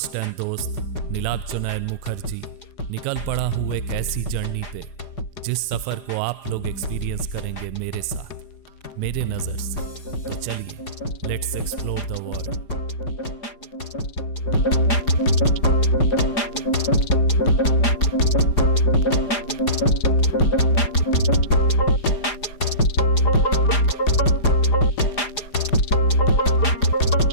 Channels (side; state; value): right; late; 4.9 ms